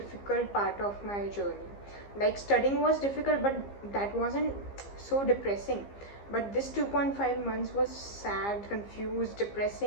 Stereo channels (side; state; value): right; late; 15 ms